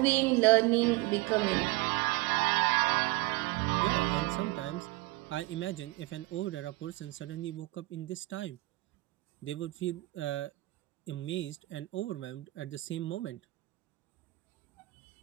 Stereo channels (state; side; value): quieter; left; 21.7 dB